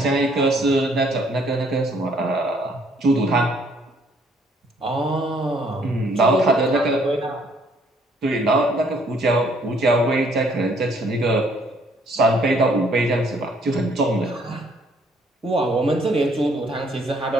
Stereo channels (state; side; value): normal; both; correlation 0.64